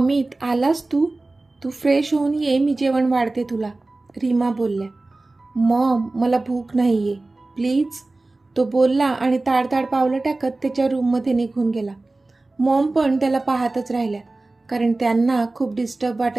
आलास तू? तू फ्रेश होऊन ये, मी जेवण वाढते तुला, रीमा बोलल्या. मॉम, मला भूक नाही आहे, प्लीज, तो बोलला आणि ताडताड पावलं टाकत त्याच्या रूममध्ये निघून गेला. मॉम पण त्याला पाहतच राहिल्या, कारण त्यांना खूप डिस्टर्ब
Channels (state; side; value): quieter; left; 3.1 dB